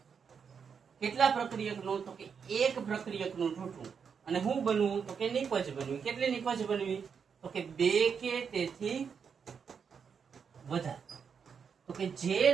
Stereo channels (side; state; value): left; quieter; 6.5 dB